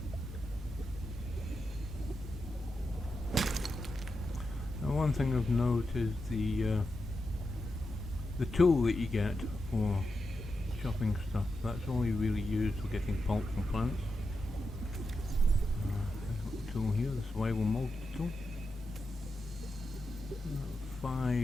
one thing of note is the tool that you get for chopping stuff. That's only really used for getting pulp from plants. There's a tool here, the survival multi-tool.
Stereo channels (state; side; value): normal; both; correlation 0.88